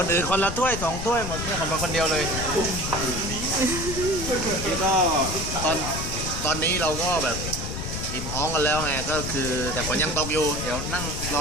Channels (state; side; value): noise; left; rumble, 5 dB below the sound